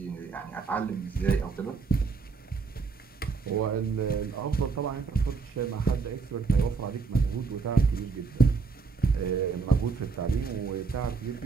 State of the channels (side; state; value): left; quieter; 4.9 dB